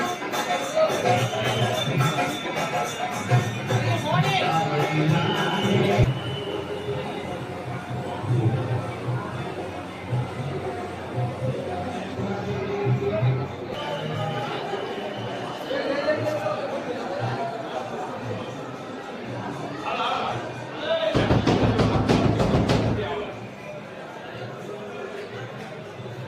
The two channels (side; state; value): both; identical; correlation 1.00